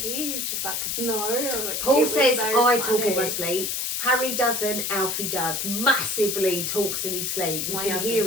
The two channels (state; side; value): noise; left; hiss, 1 dB below the sound